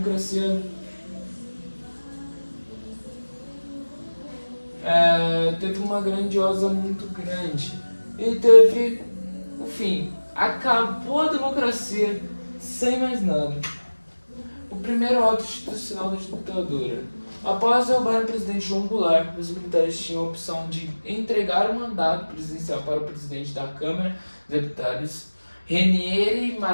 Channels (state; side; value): inverted; both; correlation -1.00